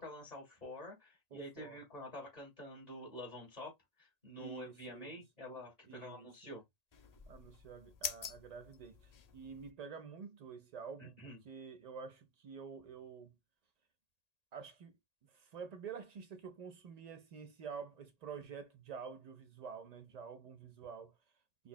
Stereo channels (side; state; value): left; late; 1.8 ms